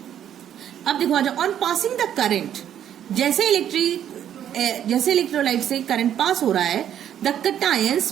अब देखो आ जाओ, ऑन पासिंग द करंट, जैसे इलेक्ट्रोलाइट से करंट पास हो रहा है the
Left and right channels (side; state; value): left; quieter; 10.1 dB